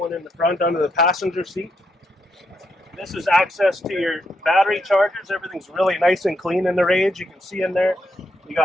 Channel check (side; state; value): both; normal; correlation 0.80